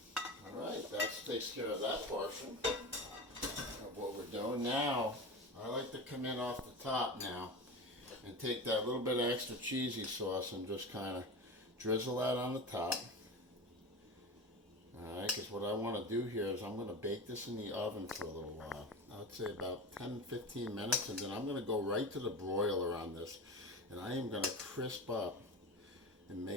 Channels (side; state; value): both; normal; correlation 0.28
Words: All right, that takes care of that portion of what we're doing. Now, I like to come in off the top now and take that little bit of extra cheesy sauce and just kind of drizzle that on the top. Alright, because what I want to do here is I'm going to bake this in the oven for a little while. I'd say about 10-15 minutes, and then I'm going to go right to the broiler on this. And I am going to crisp up and